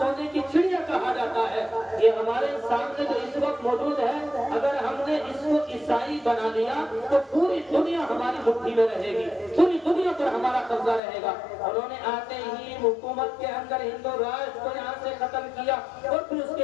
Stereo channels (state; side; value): drops out; right; at 11.0 s